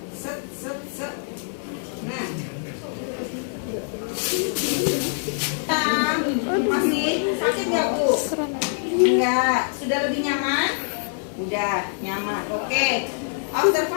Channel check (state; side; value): silent; right; digital silence